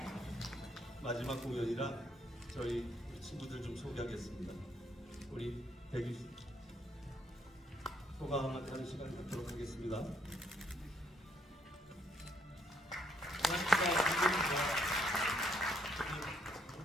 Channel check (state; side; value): normal; both; correlation 0.71